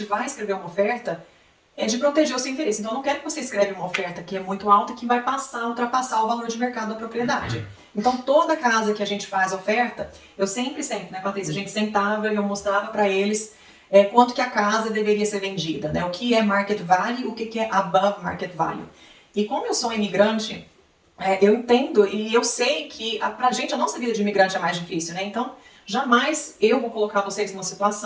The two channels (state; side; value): identical; both; correlation 1.00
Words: vai escrever uma oferta, é de proteger o seu interesse. Então, eu não quero que você escreva uma oferta que é muito alta e que vai ultrapassar o valor de mercado da propriedade. Então, toda casa que a gente faz oferta, eu sempre, né, Patrícia, a gente sentava e eu mostrava para eles quanto que a casa deveria ser vendida, né? O que é market value, o que é above market value. E como eu sou imigrante, eu entendo e eu sei que pra gente a nossa vida de imigrante é mais difícil, né? Então, jamais eu vou colocar vocês numa